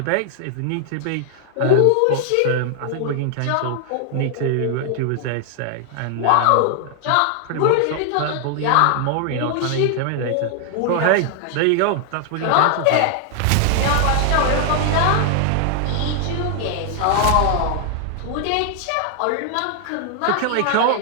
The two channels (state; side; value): different; both; correlation 0.00